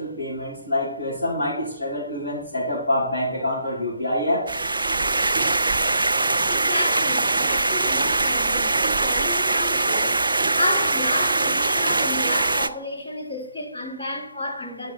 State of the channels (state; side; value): inverted; both; correlation -0.80